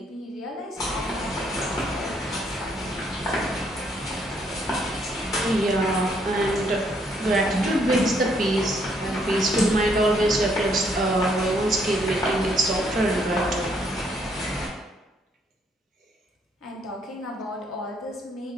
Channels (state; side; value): normal; both; correlation 0.70